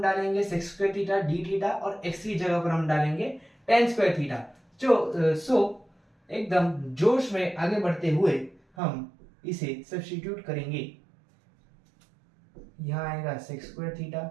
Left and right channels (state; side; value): drops out; left; at 8.6 s